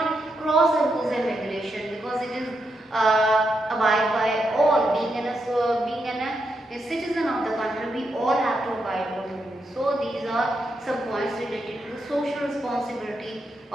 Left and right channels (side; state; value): both; normal; correlation 0.83